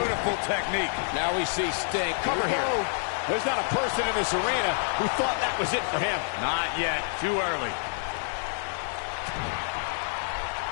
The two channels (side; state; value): right; silent; 57 dB below the other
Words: technique. Now we see Sting. Cover here. There's not a person in this arena who thought that was it for him. Not yet. Too early.